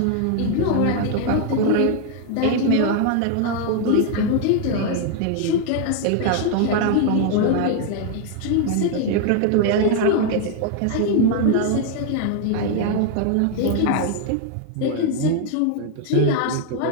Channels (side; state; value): both; different; correlation 0.00